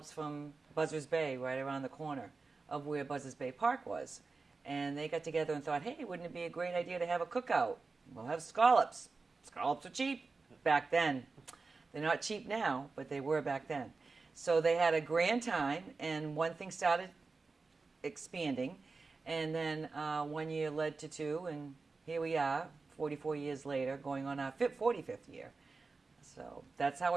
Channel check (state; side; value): quieter; left; 4.1 dB